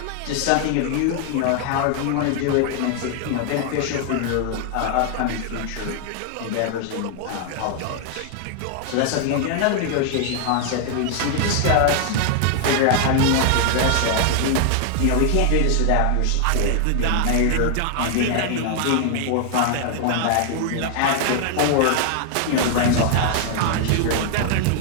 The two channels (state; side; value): different; both; correlation 0.00